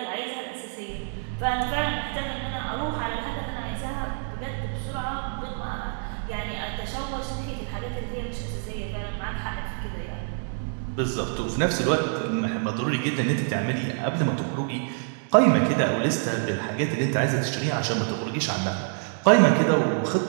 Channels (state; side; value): silent; left; 59 dB below the other